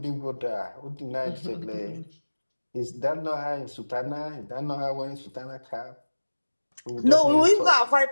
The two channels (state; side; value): inverted; both; correlation -1.00